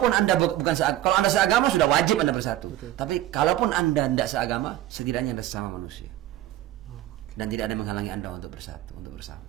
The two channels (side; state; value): left; quieter; 14.2 dB